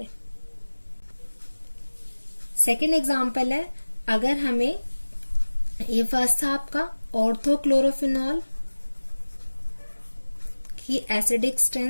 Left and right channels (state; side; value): inverted; both; correlation -1.00